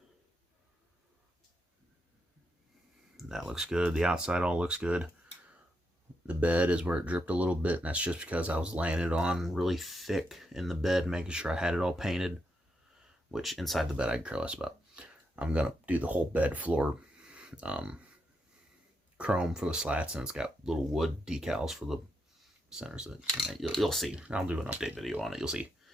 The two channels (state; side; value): normal; both; correlation 0.82